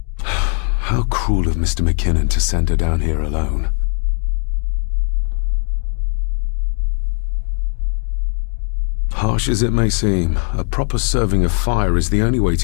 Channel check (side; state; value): right; quieter; 35.0 dB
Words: How cruel of Mr. McKinnon to send her down here alone. Harsh as it may seem, a proper serving of fire is the only way